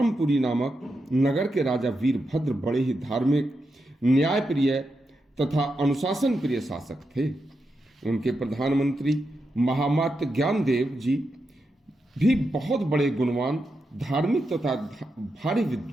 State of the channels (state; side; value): normal; both; correlation 0.86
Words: नामक नगर के राजा वीरभद्र बड़े ही धार्मिक, न्यायप्रिय तथा अनुशासन प्रिय शासक थे। उनके प्रधानमंत्री महामात्य ज्ञानदेव जी भी बहुत बड़े गुणवान, धार्मिक तथा भारी